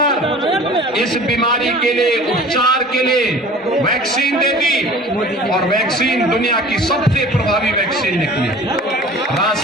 इस बीमारी के लिए, उपचार के लिए वैक्सीन दे दी। और वैक्सीन दुनिया की सबसे प्रभावी वैक्सीन निकली।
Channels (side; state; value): both; normal; correlation 0.44